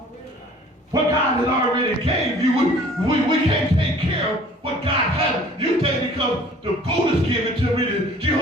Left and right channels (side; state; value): both; normal; correlation 0.51